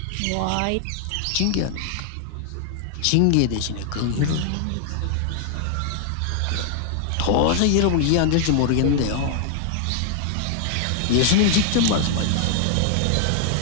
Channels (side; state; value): both; different; correlation -0.01